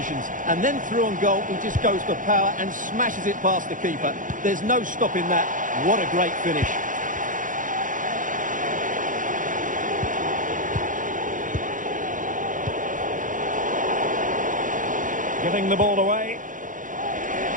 and then through on goal, he just goes for power and smashes it past the keeper. There's no stopping that. What a great finish. Giving the ball away.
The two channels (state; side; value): late; left; 0.38 ms